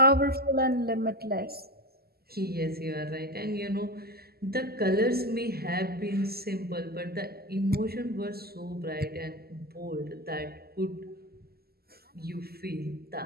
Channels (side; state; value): left; late; 0.45 ms